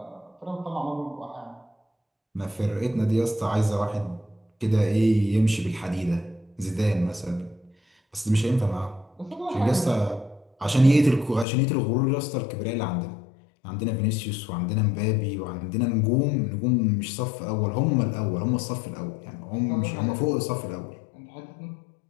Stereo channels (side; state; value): right; drops out; at 11.5 s